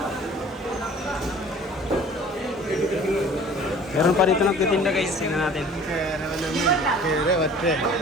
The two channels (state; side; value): normal; both; correlation 0.48